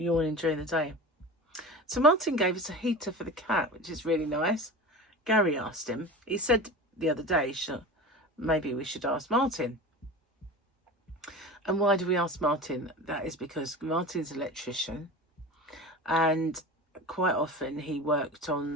during the day. So Martin gave us a heater for the cat, which is really nice. Gary asked him. He said the other day, maybe we should ask Martin. And why do we ask Martin? That is because Martin's an electrician, and quite often he worked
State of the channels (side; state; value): both; normal; correlation 0.32